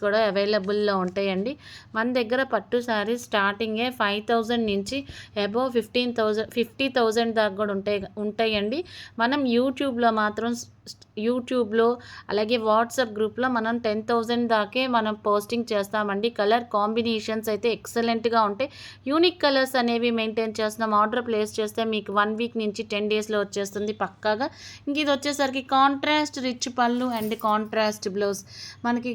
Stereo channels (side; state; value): both; identical; correlation 1.00